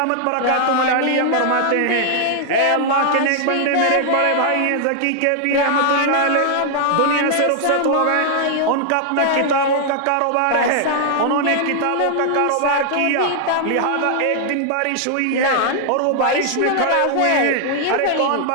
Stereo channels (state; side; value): different; both; correlation 0.00